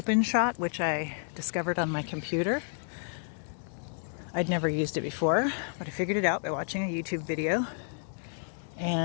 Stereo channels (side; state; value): right; silent; 57 dB below the other